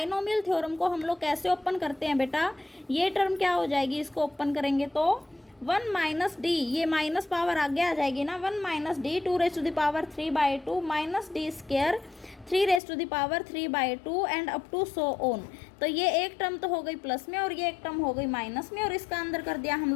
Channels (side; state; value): right; drops out; at 12.8 s